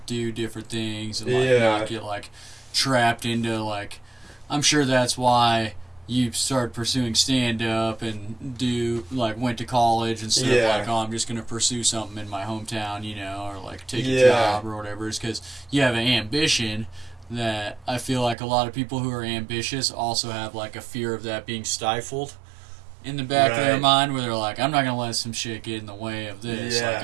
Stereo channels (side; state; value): left; drops out; at 18.4 s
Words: do different things and like not get like trapped into like. I'm sure that's why you started pursuing stand-up and went to college instead of like, oh, I'm just going to pursue something in my hometown, or like take a job or whatever. It's because you have an ambition that I feel like a lot of people who are ambitious also have like a fear of that being stifled in the back of their mind, where they're like, I'm not going to let some shit get in the way of this. Like,